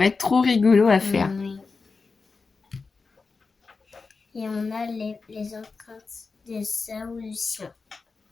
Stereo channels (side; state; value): right; quieter; 4.4 dB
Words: être trop rigolo à faire. Oui. Et on a les empreintes de ça ou du chien.